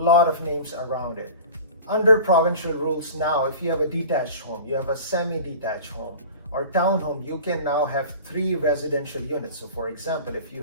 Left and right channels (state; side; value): inverted; both; correlation -0.39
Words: of names around it. Under provincial rules now, if you have a detached home, you have a semi-detached home, or townhome, you can now have 3 residential units. So for example, if you